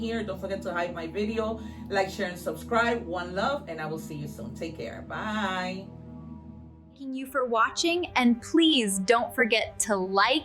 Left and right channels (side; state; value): both; identical; correlation 1.00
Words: Don't forget to hype my video, like, share, and subscribe. One love, and I will see you soon. Take care. Bye. Thanking you for watching, and please don't forget to